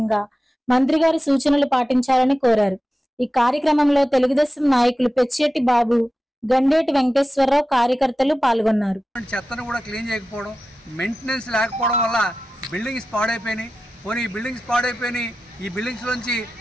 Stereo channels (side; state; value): both; normal; correlation 0.93